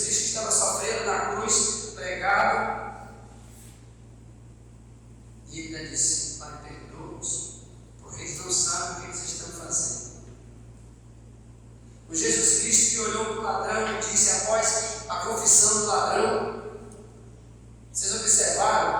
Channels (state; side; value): identical; both; correlation 1.00